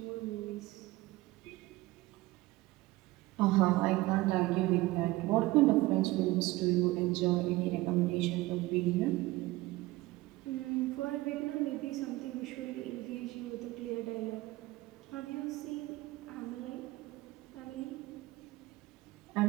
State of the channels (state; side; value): quieter; left; 19.3 dB